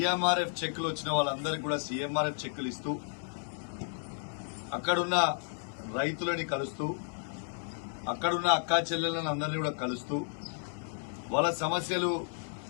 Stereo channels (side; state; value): right; silent; 56 dB below the other